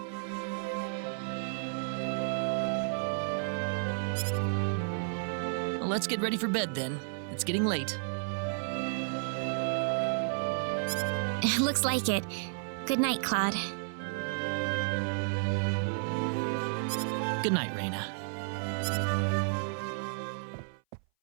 Well, let's get ready for bed then. It's getting late. Looks like it. Good night, Claude. Good night, Raina.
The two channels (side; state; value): left; silent; 56 dB below the other